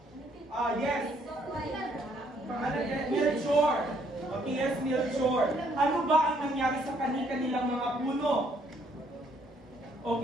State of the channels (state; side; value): normal; both; correlation 0.67